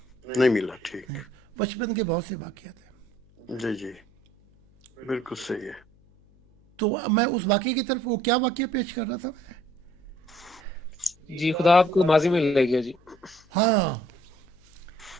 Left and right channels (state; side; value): noise; left; hum, 29 dB below the sound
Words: نہیں ملا. ٹھیک. بچپن کے بہت سے واقعات ہیں. جی جی بالکل صحیح ہے. تو میں اس واقعے کی طرف، وہ کیا واقعہ پیش کر رہا تھا میں؟ جی خدا آپ کو ماضی میں لے گیا جی. ہاں.